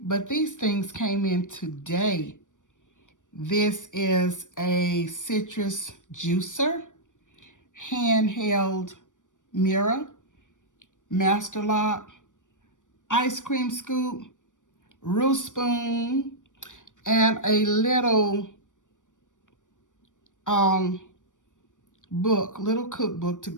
but these things came in today. This is a citrus juicer, handheld mirror, master lock, ice cream scoop, roux spoon, and a little um little cookbook to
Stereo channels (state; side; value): late; right; 0.87 ms